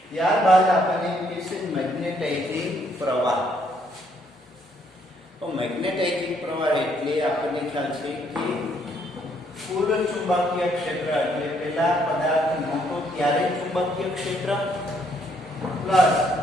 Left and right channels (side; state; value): both; normal; correlation 0.69